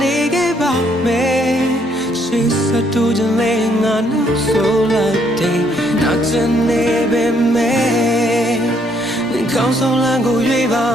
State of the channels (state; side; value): normal; both; correlation 0.69